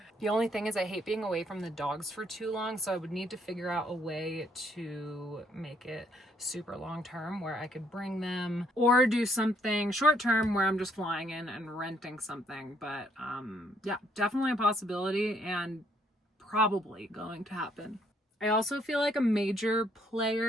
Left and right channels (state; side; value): normal; both; correlation 0.69